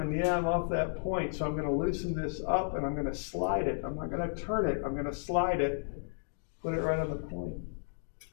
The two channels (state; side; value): silent; right; digital silence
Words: and yeah, I'm off that point. So I'm gonna loosen this up and I'm gonna slide it. I'm not gonna turn it, I'm gonna slide it, put it right on the point.